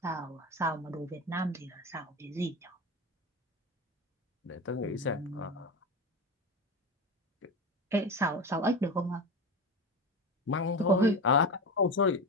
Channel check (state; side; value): normal; both; correlation 0.24